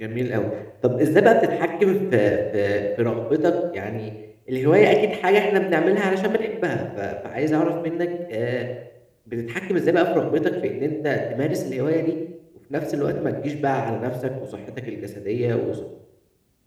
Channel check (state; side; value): identical; both; correlation 1.00